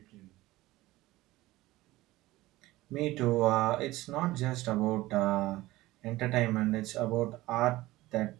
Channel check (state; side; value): quieter; left; 18.1 dB